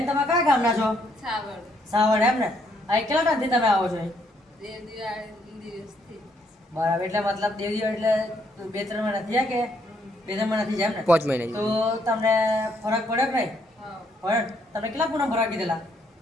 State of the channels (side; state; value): both; normal; correlation 0.71